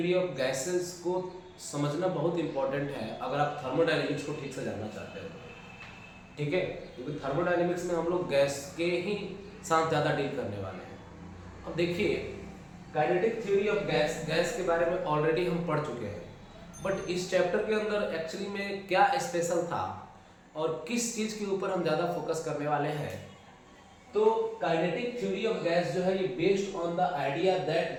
of gases को समझना बहुत इंपॉर्टेंट है अगर आप थर्मोडायनेमिक्स को ठीक से जानना चाहते हो। ठीक है, क्योंकि थर्मोडायनेमिक्स में हम लोग गैस के ही साथ ज़्यादा डील करने वाले हैं। अब देखिए, काइनेटिक थ्योरी ऑफ गैस के बारे में ऑलरेडी हम पढ़ चुके हैं, बट इस चैप्टर के अंदर एक्चुअली में क्या स्पेशल था और किस चीज़ के ऊपर हम ज़्यादा फोकस करने वाले हैं। तो काइनेटिक थ्योरी ऑफ गैस जो है ये based on the idea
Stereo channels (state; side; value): identical; both; correlation 1.00